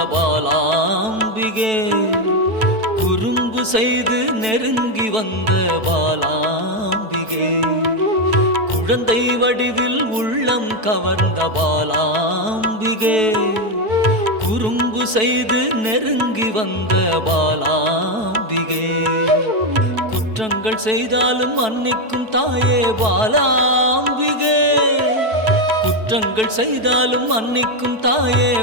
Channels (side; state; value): left; late; 4.6 ms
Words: பாலாம்பிகே, குறும்பு செய்து நெருங்கி வந்த பாலாம்பிகே. குழந்தை வடிவில் உள்ளம் கவர்ந்த பாலாம்பிகே, குறும்பு செய்து நெருங்கி வந்த பாலாம்பிகே. குற்றங்கள் செய்தாலும் மன்னிக்கும் தாயே பாலாம்பிகே, குற்றங்கள் செய்தாலும் மன்னிக்கும் தாயே